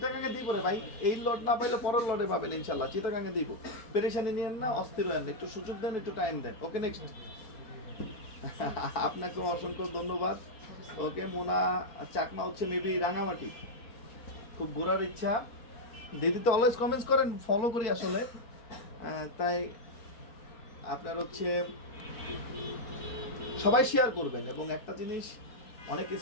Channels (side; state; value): right; late; 4.6 ms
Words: দিব রে ভাই, এই লট না পাইলে পরের লটে পাবেন ইনশাআল্লাহ। চিটাগাঙ্গে দিব, পেরেশানি নিয়েন না, অস্থির হয়েন, একটু সুযোগ দেন, একটু টাইম দেন। ওকে, নেক্সট। আপনাকে অসংখ্য ধন্যবাদ। ওকে, মোনা চাকমা হচ্ছে মেবি রাঙামাটি, খুব ঘোরার ইচ্ছা। দিদি তো অলওয়েজ কমেন্টস করেন, ফলো করি আসলে, তাই আপনার হচ্ছে সবাই শেয়ার করবেন। এবং একটা জিনিস, অনেক